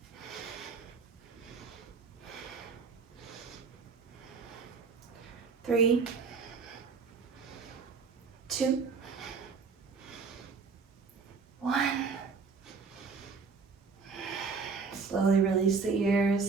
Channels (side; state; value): left; quieter; 5.0 dB